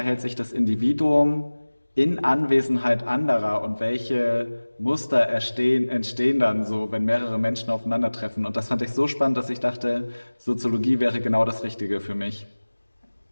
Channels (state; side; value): inverted; both; correlation -1.00